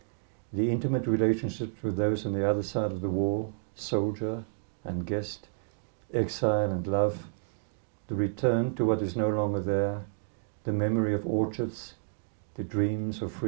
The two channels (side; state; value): left; silent; digital silence